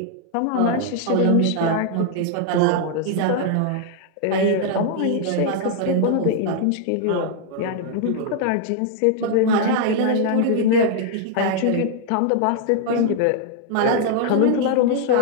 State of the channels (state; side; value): different; both; correlation 0.00